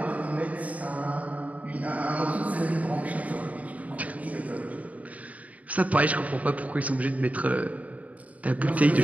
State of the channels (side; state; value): left; late; 0.070 ms